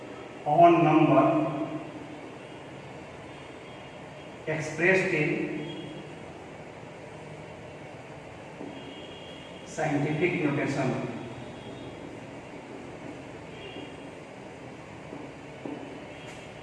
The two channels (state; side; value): identical; both; correlation 1.00